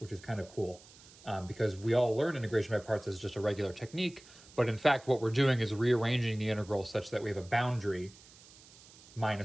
is kind of cool because we all learn integration by parts as just a regular technique, but in fact what we're doing is rearranging the integral such that we have a boundary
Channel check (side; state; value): right; noise; hiss, 23 dB below the sound